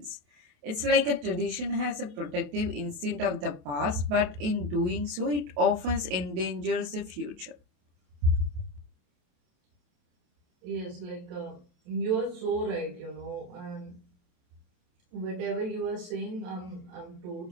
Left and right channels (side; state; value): left; late; 27 ms